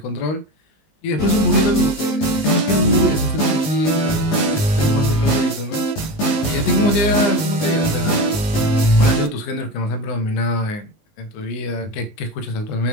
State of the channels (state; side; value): late; right; 19 ms